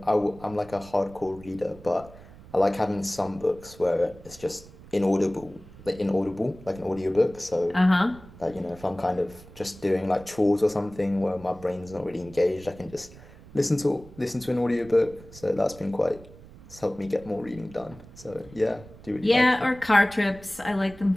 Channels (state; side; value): noise; right; rumble, 20 dB below the sound